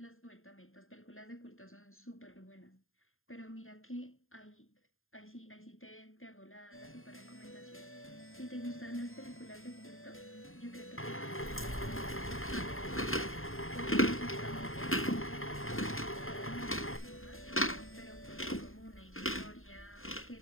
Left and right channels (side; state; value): right; late; 0.60 ms